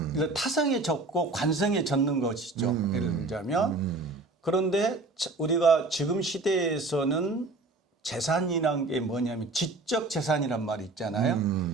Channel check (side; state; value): left; quieter; 3.3 dB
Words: 타성에 젖고 관성에 젖는 것이죠. 예를 들자면 그런데 우리가 지금 시대에서는 재산이란 게 뭐냐면 지적 재산이란 말이 있잖아요.